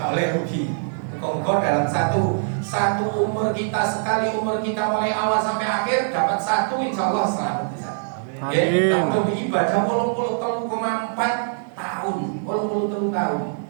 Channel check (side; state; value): left; silent; 62 dB below the other